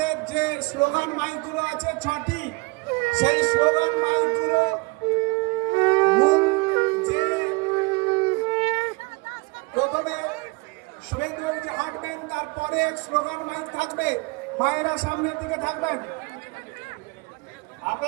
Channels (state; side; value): quieter; left; 26.8 dB